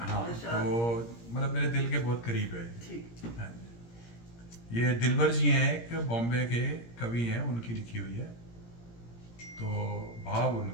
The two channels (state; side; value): late; right; 17 ms